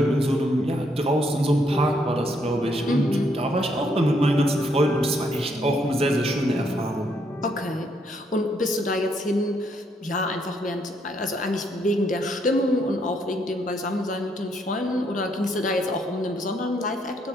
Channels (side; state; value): both; normal; correlation 0.73